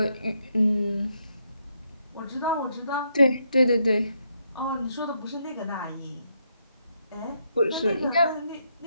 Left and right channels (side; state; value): both; inverted; correlation -0.77